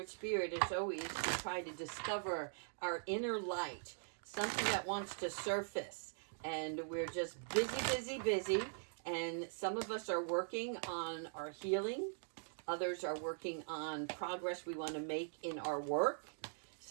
Spirit as always to try to discover our inner light, something that wants to surface. And we're just busy. And some of us are working on our healing. Others are working on progress we want to make in our work.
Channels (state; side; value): silent; left; digital silence